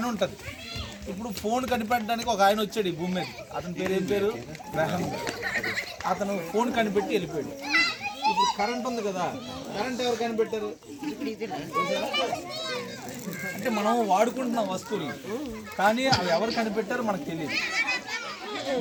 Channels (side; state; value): both; identical; correlation 1.00